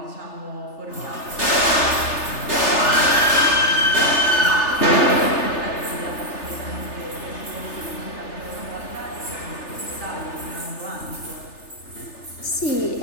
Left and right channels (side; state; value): right; late; 3.3 ms